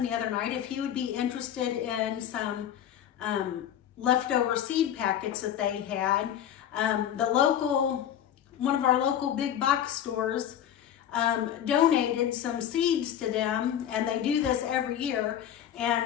the other night if he would be interested in some leftover seed packets that they had. One of our local big box stores donated some seeds to them, and they do this every year.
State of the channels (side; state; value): right; quieter; 10.2 dB